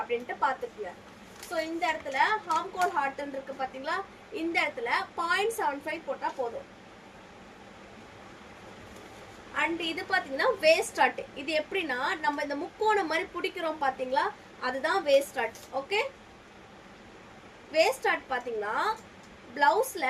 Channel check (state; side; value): identical; both; correlation 1.00